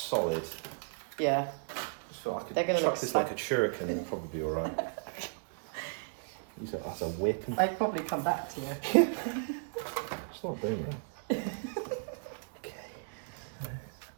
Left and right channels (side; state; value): left; silent; digital silence